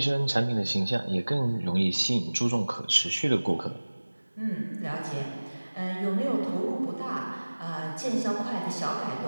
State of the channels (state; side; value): inverted; both; correlation -1.00